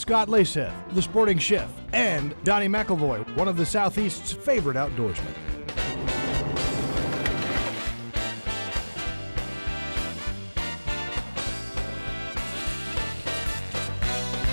Leysath, the sporting chef, and Donnie McElvoy, one of the Southeast's favorite outdoorsmen.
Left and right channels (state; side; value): inverted; both; correlation -1.00